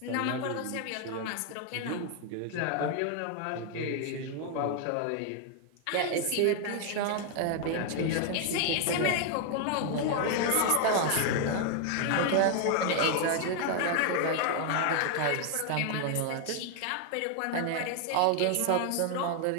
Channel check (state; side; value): different; both; correlation 0.00